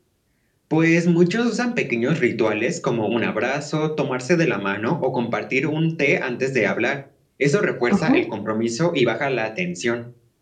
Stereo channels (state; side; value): identical; both; correlation 1.00